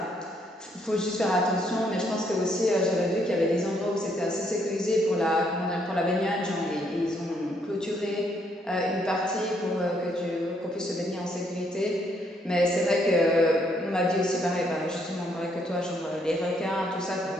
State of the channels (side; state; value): both; normal; correlation 0.71